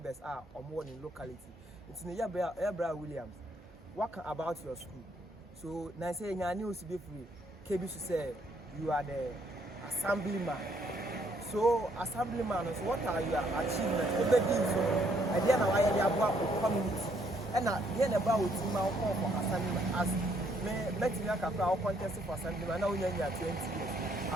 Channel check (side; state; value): both; normal; correlation 0.69